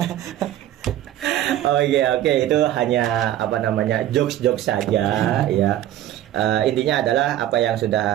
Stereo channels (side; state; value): left; quieter; 12.6 dB